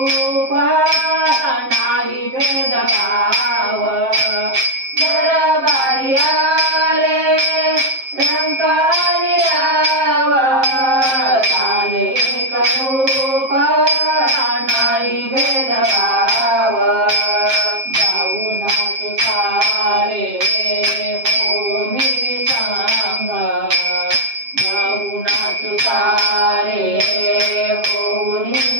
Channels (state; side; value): late; left; 7.6 ms